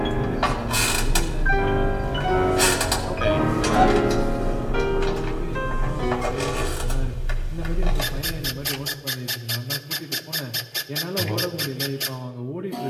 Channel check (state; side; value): identical; both; correlation 1.00